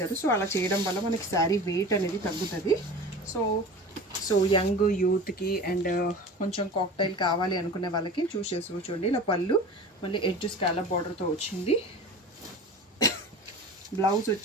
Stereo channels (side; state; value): both; normal; correlation 0.36